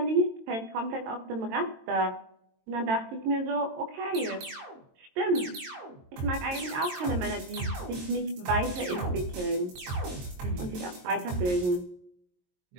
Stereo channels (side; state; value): left; late; 22 ms